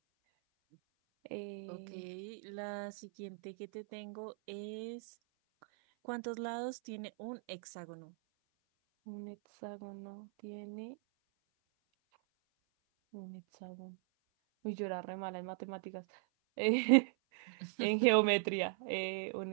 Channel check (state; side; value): silent; left; 51 dB below the other